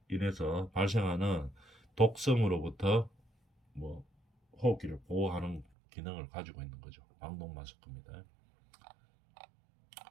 인해서 발생하는 독성으로부터 뭐 호흡기를 보호하는 기능을 가지고 있는 거죠. 방독 마스크입니다.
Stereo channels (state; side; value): drops out; left; at 5.7 s